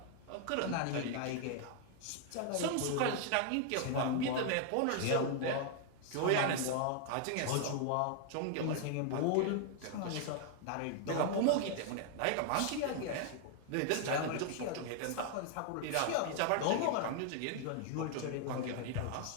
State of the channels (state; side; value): different; both; correlation 0.00